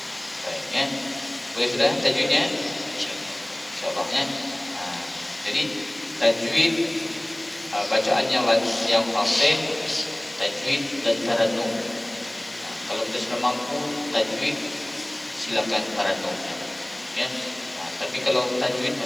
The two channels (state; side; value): noise; left; hiss, 26 dB below the sound